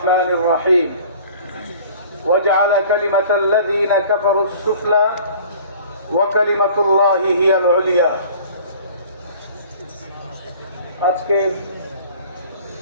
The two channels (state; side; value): inverted; both; correlation -0.47